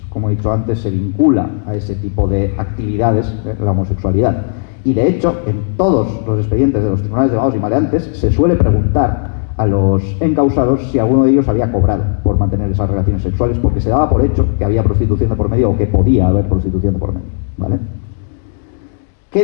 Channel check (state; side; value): silent; right; digital silence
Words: Como he dicho antes, se vincula a ese tipo de actividades la homosexualidad. Y de hecho, en todos los expedientes de los tribunales de vagos y maleantes se suele preguntar a los encausados si alguno de ellos había cobrado por mantener esas relaciones sexuales, porque se daba por hecho que había prostitución de por medio o que podía haber prostitución de por medio, ¿vale? ¿Qué